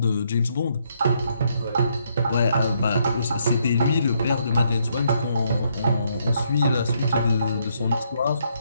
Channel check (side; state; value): both; inverted; correlation -0.73